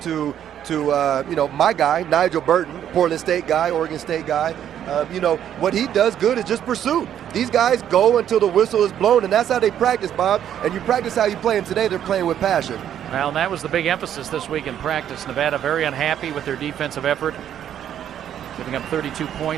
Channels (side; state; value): left; quieter; 10.1 dB